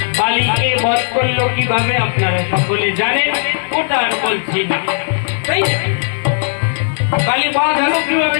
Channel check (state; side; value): silent; right; digital silence